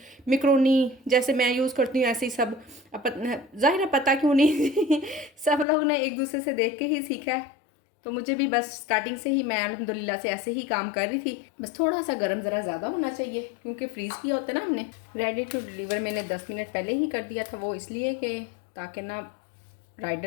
मैक्रोनी जैसे मैं यूज़ करती हूँ ऐसे ही सब। ज़ाहिर है पता क्यों नहीं सब लोग ने एक दूसरे से देख के ही सीखा है, तो मुझे भी बस स्टार्टिंग से ही मैं अल्हम्दुलिल्लाह से ऐसे ही काम कर रही थी। बस थोड़ा सा गर्म ज़रा ज़्यादा होना चाहिए क्योंकि फ्रीज़ किया होता है ना हमने। रेडी टू डिलीवर मैंने 10 मिनट पहले ही कर दिया था, वो इसलिए कि ताकि ना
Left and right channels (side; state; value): right; drops out; at 5.7 s